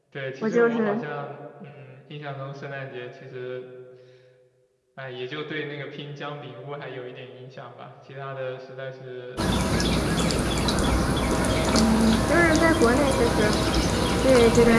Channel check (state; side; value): identical; both; correlation 1.00